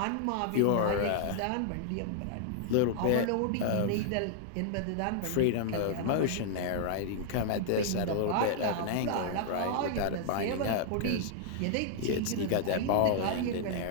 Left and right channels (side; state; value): both; different; correlation -0.01